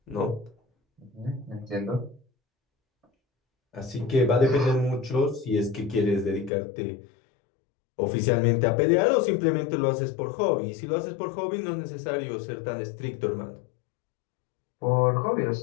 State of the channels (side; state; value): right; drops out; at 6.5 s